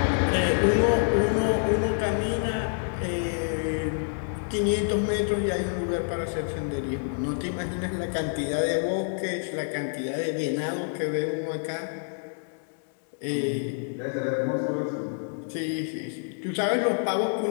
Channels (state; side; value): silent; right; 60 dB below the other